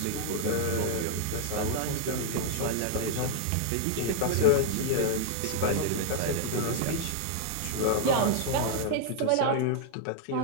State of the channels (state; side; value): different; both; correlation 0.00